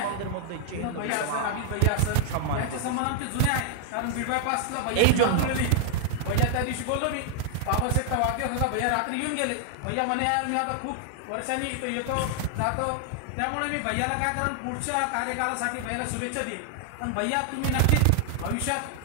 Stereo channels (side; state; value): both; different; correlation 0.00